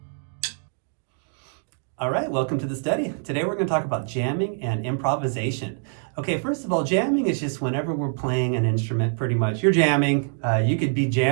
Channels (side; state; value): left; silent; 62 dB below the other